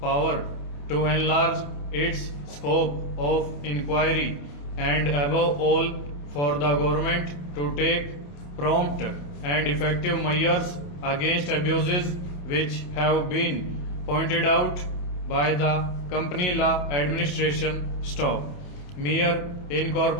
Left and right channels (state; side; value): late; right; 28 ms